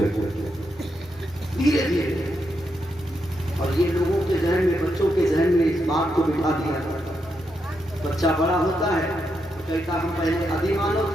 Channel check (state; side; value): normal; both; correlation 0.82